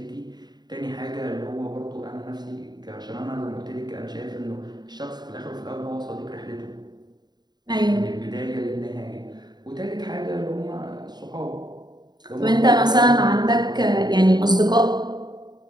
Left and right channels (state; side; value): late; left; 0.20 ms